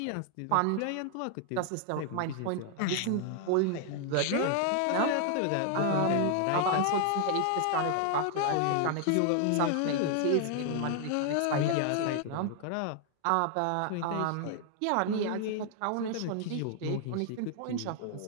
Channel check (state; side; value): different; both; correlation 0.00